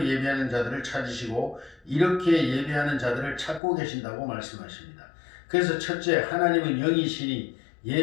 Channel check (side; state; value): right; drops out; at 3.6 s